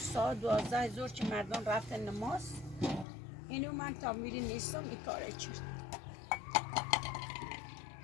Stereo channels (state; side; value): drops out; right; at 3.1 s